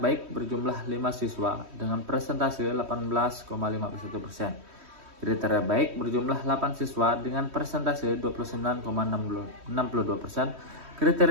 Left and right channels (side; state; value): left; late; 3.1 ms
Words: baik berjumlah 5 siswa dengan presentase 18,51%. Kriteria baik berjumlah 8 siswa dengan presentase 29,62%.